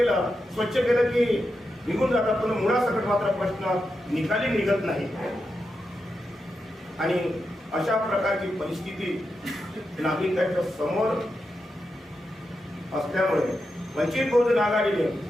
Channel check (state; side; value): normal; both; correlation 0.88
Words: स्वच्छ केलं की निघून जातात, पण मुळासकट मात्र प्रश्न निकाली निघत नाही. आणि अशा प्रकारची परिस्थिती नागरिकांच्या समोर असल्यामुळे वंचित बहुजन आघाडीने